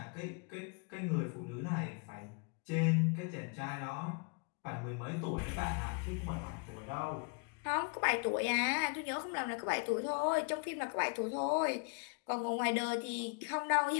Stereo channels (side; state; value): right; quieter; 36.8 dB